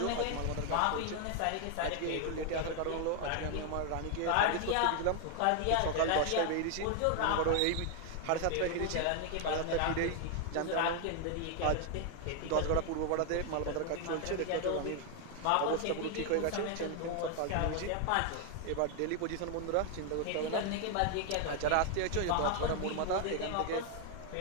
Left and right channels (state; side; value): different; both; correlation 0.01